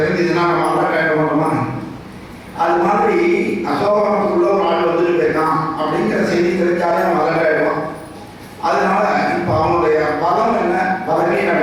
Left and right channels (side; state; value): both; identical; correlation 1.00